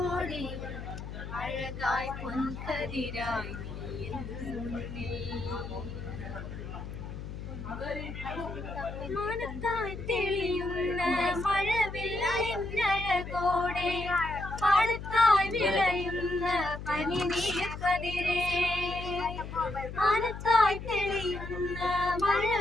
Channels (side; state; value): left; noise; hum, 9 dB below the sound